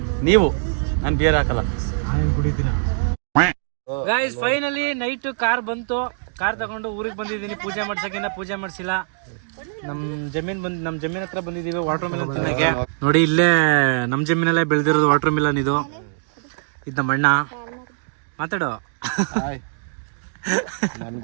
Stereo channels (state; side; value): silent; left; digital silence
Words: ನಾನು ಬಿಯರ್ ಹಾಕಲ್ಲ, ನಾನು ಕುಡಿತೀನ. ಗೈಸ್ ಫೈನಲಿ ನೈಟ್ ಕಾರ್ ಬಂತು. ಕಾರ್ ತಗೊಂಡು ಊರಿಗೆ ಬಂದಿದ್ದೀನಿ ಪೂಜೆ ಮಾಡ್ಸಕ್ಕಿನ್ನ ಪೂಜೆ ಮಾಡಿಸಿಲ್ಲ. ನಮ್ಮ ಜಮೀನ್ ಹತ್ರ ಬಂದಿದ್ದೀವಿ ವಾಟರ್ ಮಿಲನ್ ತಿನ್ನಕ್ಕೆ. ನೋಡಿ ಇಲ್ಲೇ ನಮ್ಮ ಜಮೀನಲ್ಲೇ ಬೆಳೆದಿರೋದು ವಾಟರ್ ಮಿಲನ್. ಇದು ನಮ್ಮ ಅಣ್ಣ. ಮಾತಾಡೋ. ನನ್ಗೆ